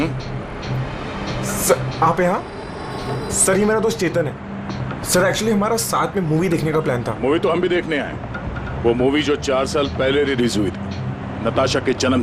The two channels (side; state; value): both; identical; correlation 1.00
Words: सर आप यहाँ? सर ये मेरा दोस्त चेतन है। सर एक्चुअली हमारा साथ में मूवी देखने का प्लान था। मूवी तो हम भी देखने आए। वो मूवी जो 4 साल पहले रिलीज हुई थी नताशा के